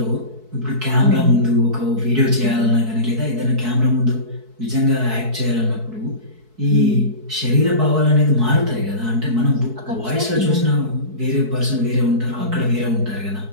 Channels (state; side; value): late; left; 4.6 ms